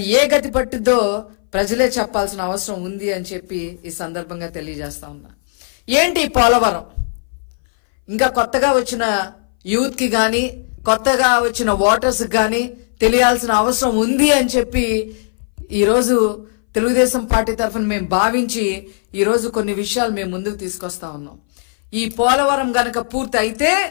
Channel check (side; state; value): right; silent; 63 dB below the other